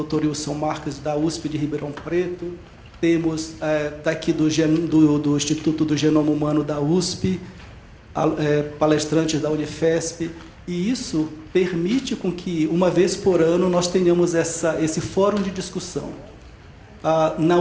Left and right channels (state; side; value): identical; both; correlation 1.00